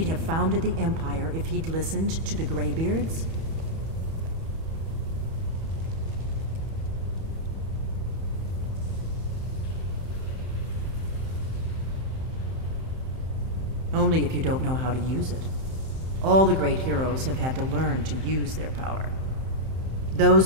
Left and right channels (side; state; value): left; late; 31 ms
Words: have founded the Empire if he'd listened to the Greybeards? Only if you don't know how to use it. All the great heroes have had to learn to use their power.